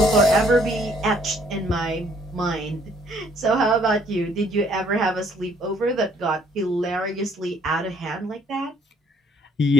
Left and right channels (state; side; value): normal; both; correlation 0.64